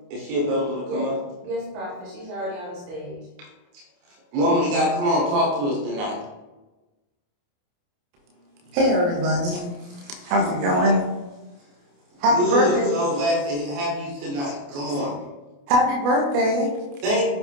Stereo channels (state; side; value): late; left; 28 ms